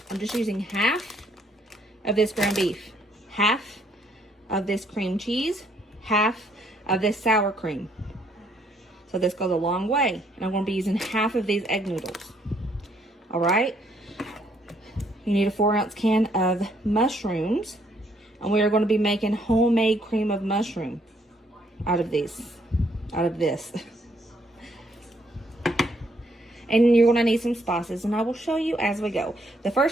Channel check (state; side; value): normal; both; correlation 0.69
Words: I'm just using half of this ground beef, half of this cream cheese, half of this sour cream. So this goes a long way. And I'm going to be using half of these egg noodles. All right. You need a 4-ounce can of mushrooms. And we are going to be making homemade cream of mushroom out of this. And you're going to need some spices. And I will show you as we go. The